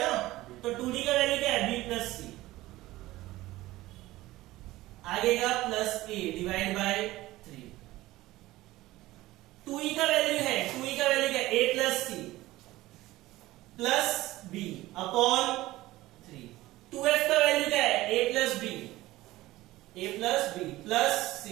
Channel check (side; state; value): left; quieter; 17.5 dB